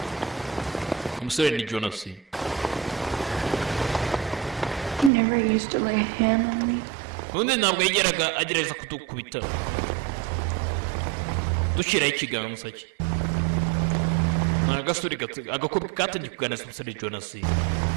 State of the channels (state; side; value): drops out; left; at 5.1 s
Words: Umusore ni Jonas. He never used to lay a hand on me. Undi ntabwo yigeraga agerageza kudukubita. Dushyiraho ikiganza cye. Agasuri agakobwa katangiye kuganira n'umusore Jonas. He